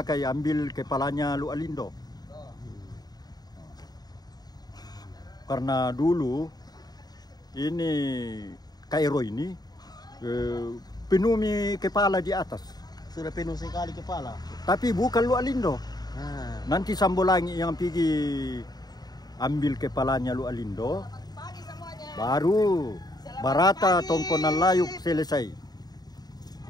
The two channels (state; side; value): late; right; 0.19 ms